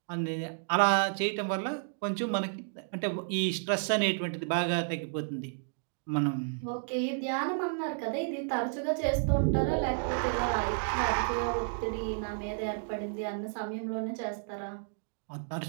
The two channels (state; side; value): silent; left; digital silence